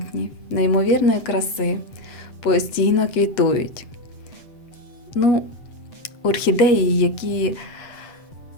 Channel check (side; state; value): right; late; 7.8 ms